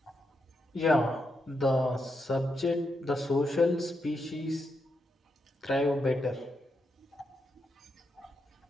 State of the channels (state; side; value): normal; both; correlation 0.83